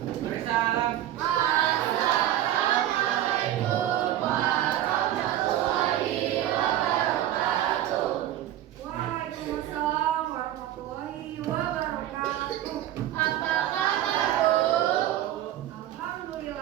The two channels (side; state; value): left; quieter; 12.7 dB